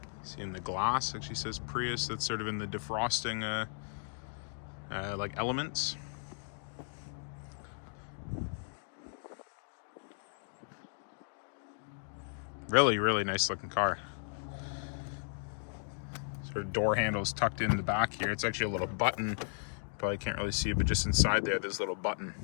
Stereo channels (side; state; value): right; silent; digital silence